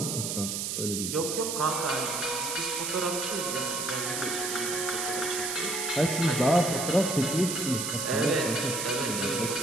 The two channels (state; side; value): noise; right; hiss, 2 dB below the sound